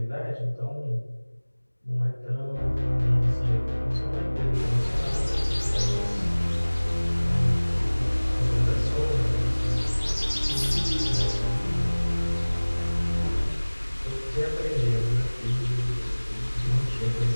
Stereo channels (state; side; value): inverted; both; correlation -1.00